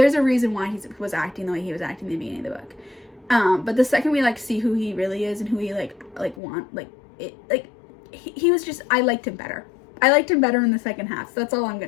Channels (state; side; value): drops out; right; at 6.4 s